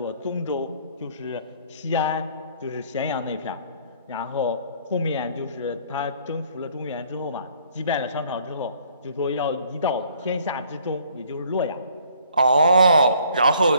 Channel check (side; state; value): both; inverted; correlation -0.60